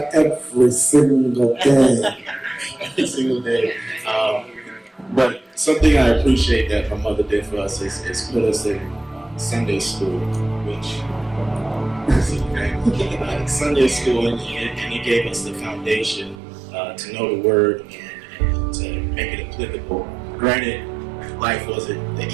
every single day. every single day. But something I appreciate that my mother did for us is put us in Sunday school, which Sunday school, and it gave us the foundation to know the word and to make it applicable. Granted, life wasn't the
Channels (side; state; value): left; drops out; at 16.4 s